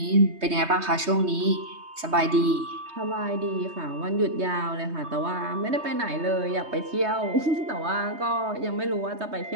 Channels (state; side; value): late; left; 3.2 ms